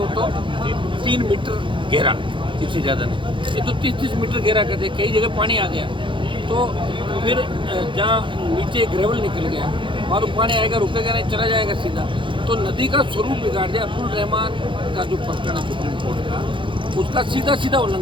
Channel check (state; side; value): late; left; 0.24 ms